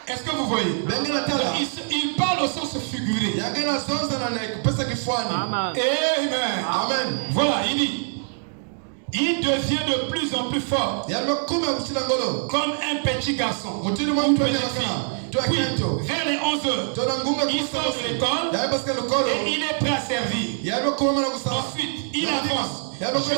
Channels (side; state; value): left; silent; 63 dB below the other